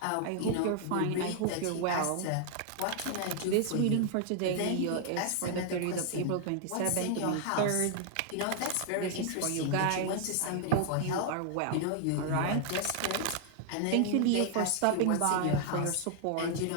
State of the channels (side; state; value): both; different; correlation 0.00